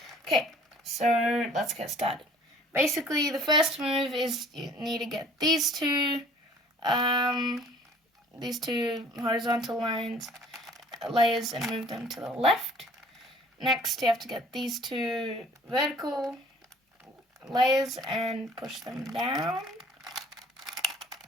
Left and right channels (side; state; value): both; normal; correlation 0.52